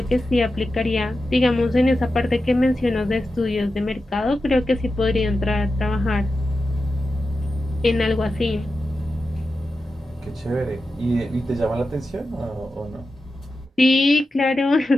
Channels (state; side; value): normal; both; correlation 0.91